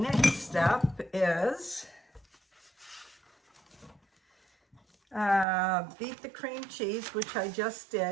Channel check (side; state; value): left; drops out; at 5.5 s